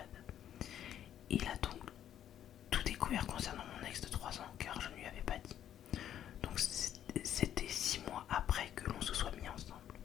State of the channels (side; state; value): right; quieter; 10.6 dB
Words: Il a donc tout découvert concernant mon ex de 3 ans car je ne lui avais pas dit. Donc c'était 6 mois après que l'on se soit mis ensemble.